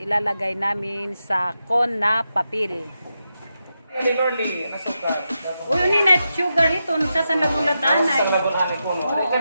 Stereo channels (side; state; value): both; inverted; correlation -0.87